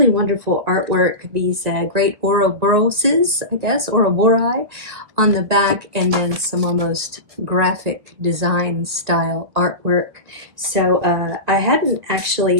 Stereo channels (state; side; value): late; left; 1.8 ms